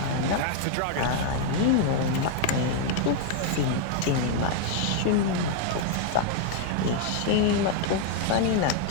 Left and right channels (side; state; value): both; different; correlation 0.00